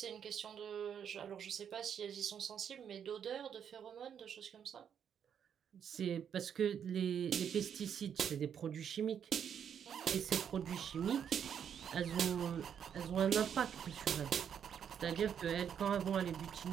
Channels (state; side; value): quieter; left; 8.2 dB